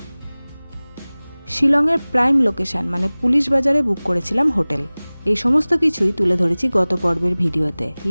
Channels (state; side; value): inverted; both; correlation -1.00